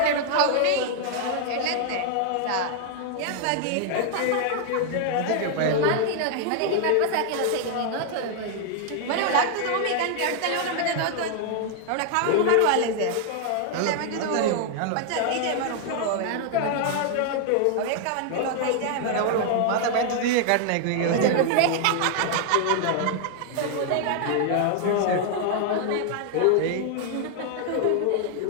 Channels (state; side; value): different; both; correlation 0.00